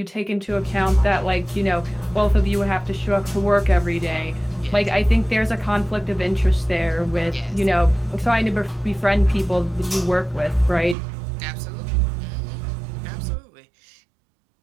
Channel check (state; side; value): drops out; left; at 11.0 s